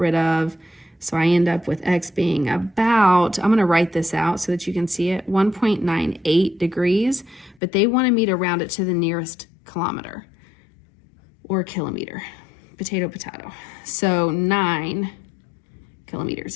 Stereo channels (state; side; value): drops out; right; at 7.6 s